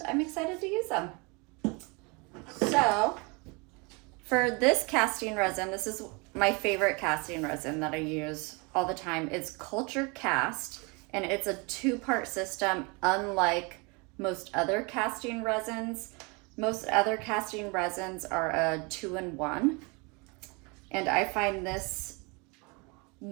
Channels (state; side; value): quieter; left; 29.5 dB